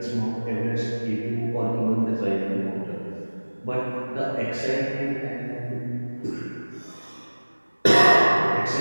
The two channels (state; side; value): inverted; both; correlation -1.00